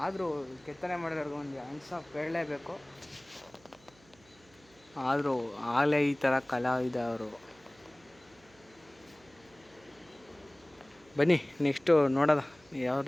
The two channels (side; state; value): right; noise; hum, 28 dB below the sound